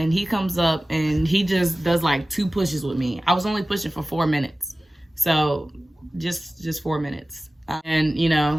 he comes up, and he just does like 2 pushes with me. I was only pushing for 4 minutes. So just 4 minutes. And, you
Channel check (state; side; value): normal; both; correlation 0.96